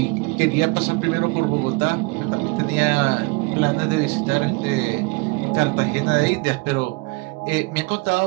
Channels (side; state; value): left; quieter; 27.3 dB